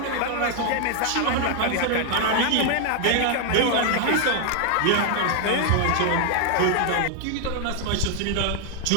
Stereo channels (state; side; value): different; both; correlation 0.00